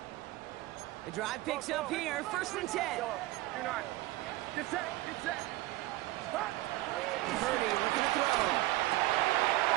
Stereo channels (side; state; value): left; quieter; 18.1 dB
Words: The drive picks up here. 1st and 10. Get set. Purdy looking to throw.